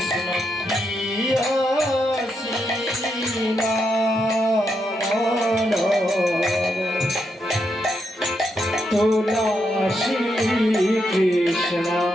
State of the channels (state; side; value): normal; both; correlation 0.82